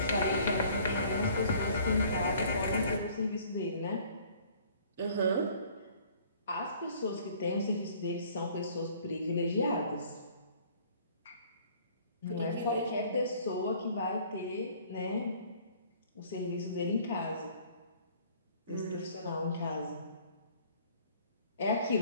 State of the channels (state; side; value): inverted; both; correlation -0.55